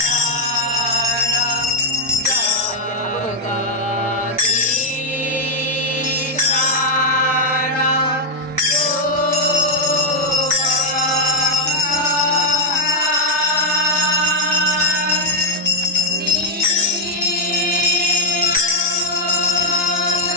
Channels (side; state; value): both; normal; correlation 0.00